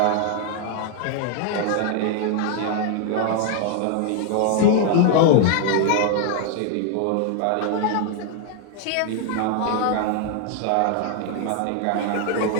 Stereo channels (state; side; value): different; both; correlation 0.00